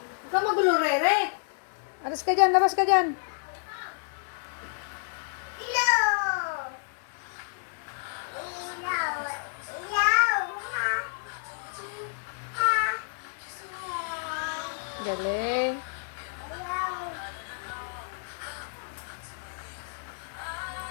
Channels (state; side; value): silent; right; 58 dB below the other